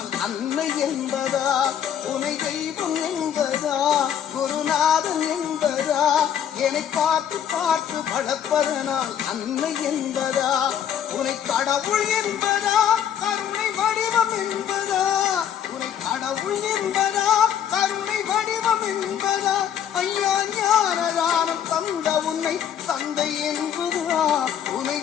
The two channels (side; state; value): right; quieter; 9.2 dB